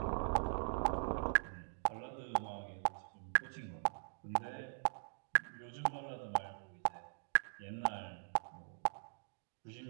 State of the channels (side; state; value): left; silent; digital silence